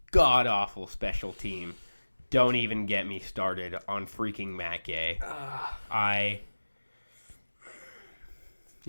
god-awful special team, don't even get me started on freaking Matt Gay.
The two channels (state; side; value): inverted; both; correlation -1.00